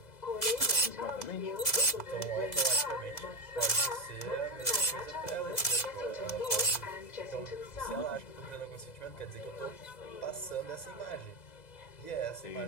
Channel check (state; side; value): late; right; 2.0 ms